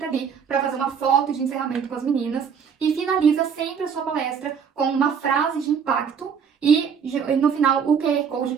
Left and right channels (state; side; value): quieter; left; 6.9 dB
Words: ali para fazer uma foto de encerramento com as meninas e finaliza sempre a sua palestra com uma frase de impacto e no final o QR Code,